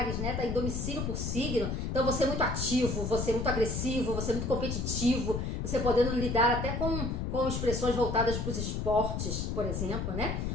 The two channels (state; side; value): noise; left; rumble, 2 dB below the sound